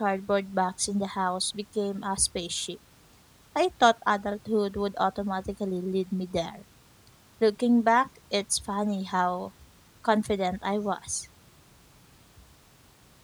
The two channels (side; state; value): both; identical; correlation 1.00